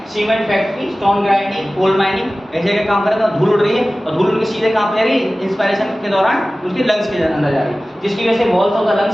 cement factory, stone grinding, coal mining, ऐसे जगह काम कर रहे हैं, धूल उड़ रही है और धूल उनके सीधे कहाँ पे जा रही है, इंस्पायरेशन के दौरान उनके लंग्स के अंदर जा रही है, जिसकी वजह से walls of the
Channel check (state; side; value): normal; both; correlation 0.97